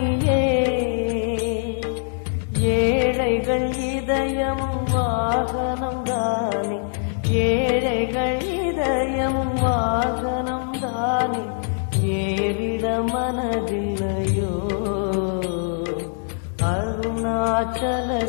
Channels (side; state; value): right; silent; digital silence